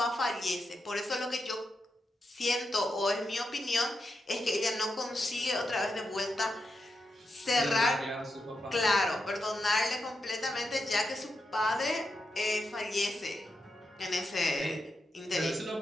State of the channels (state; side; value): normal; both; correlation 0.86